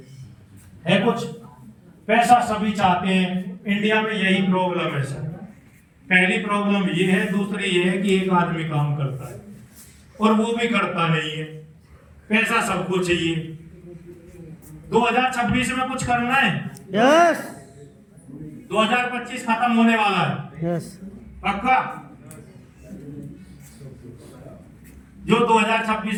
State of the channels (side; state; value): both; identical; correlation 1.00